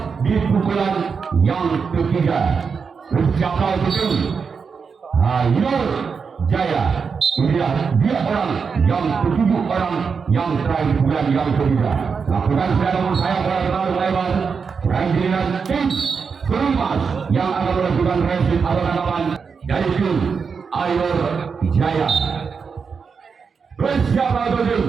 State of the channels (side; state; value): left; quieter; 5.7 dB